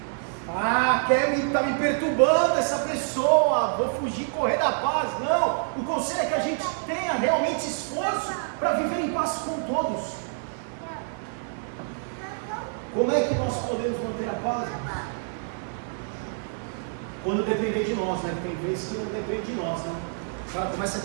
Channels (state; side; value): silent; left; digital silence